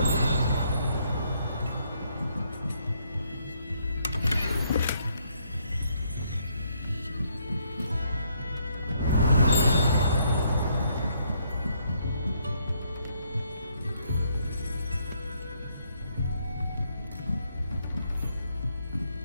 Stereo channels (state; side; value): inverted; both; correlation -0.71